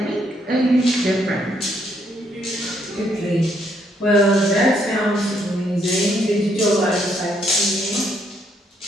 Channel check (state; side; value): normal; both; correlation 0.72